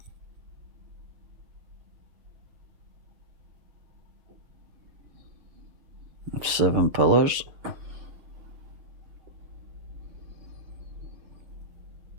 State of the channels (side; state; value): left; late; 6.9 ms